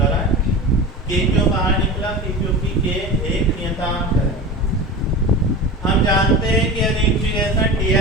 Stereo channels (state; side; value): normal; both; correlation 0.30